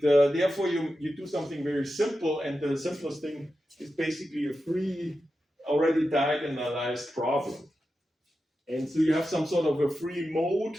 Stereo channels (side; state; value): both; normal; correlation 0.90